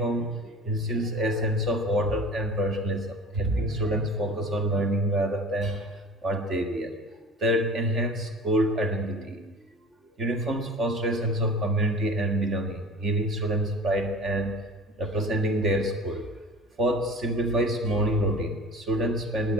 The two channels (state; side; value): normal; both; correlation 0.40